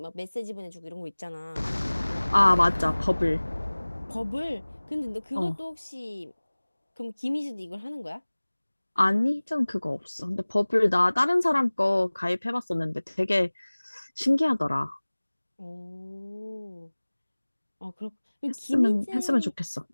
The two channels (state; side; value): inverted; both; correlation -1.00